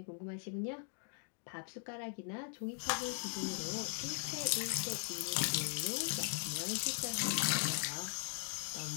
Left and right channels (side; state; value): right; silent; digital silence